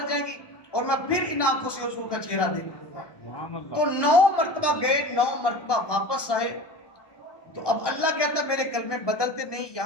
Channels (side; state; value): right; late; 1.2 ms